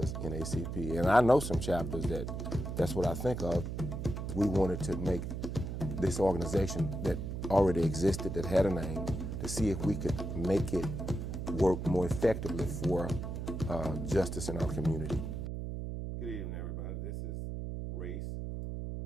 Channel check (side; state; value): right; noise; hum, 5 dB below the sound